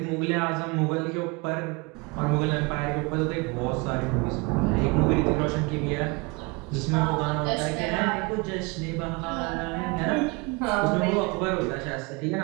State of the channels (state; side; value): quieter; left; 27.8 dB